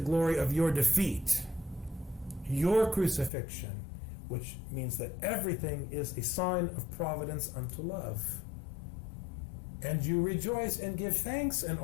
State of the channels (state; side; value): drops out; right; at 3.3 s